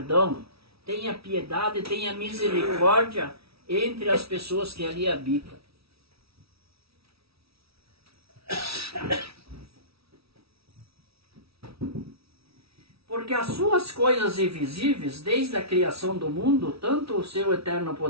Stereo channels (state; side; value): late; left; 0.76 ms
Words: tenha piedade, tenha misericórdia entre as pessoas que ali habitam. Porque as suas coisas invisíveis, desde a criação do mundo, tanto o seu eterno